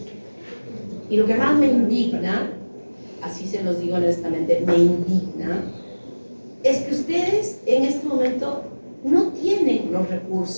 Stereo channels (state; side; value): inverted; both; correlation -1.00